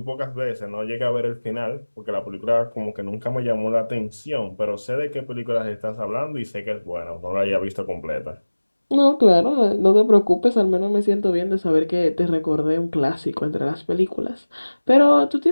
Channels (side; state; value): both; inverted; correlation -1.00